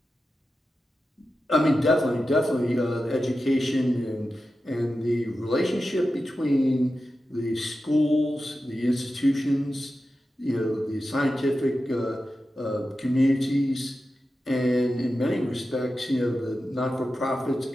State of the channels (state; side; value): normal; both; correlation 0.92